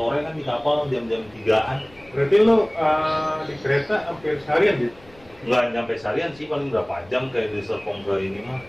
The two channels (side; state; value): left; noise; rumble, 26 dB below the sound